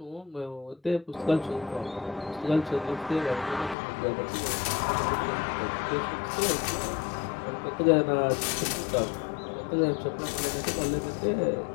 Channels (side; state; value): right; drops out; at 3.8 s